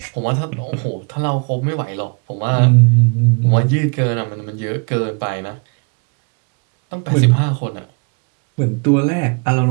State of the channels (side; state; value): left; quieter; 35.3 dB